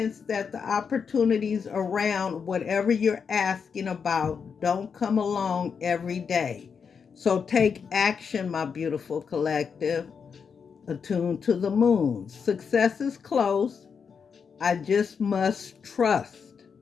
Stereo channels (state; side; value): quieter; right; 6.2 dB